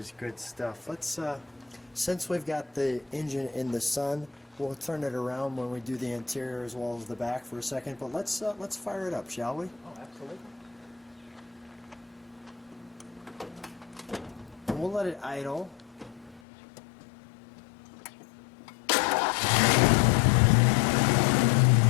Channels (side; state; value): right; drops out; at 16.4 s